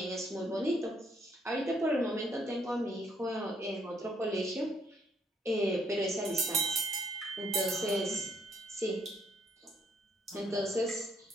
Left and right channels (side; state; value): both; normal; correlation 0.70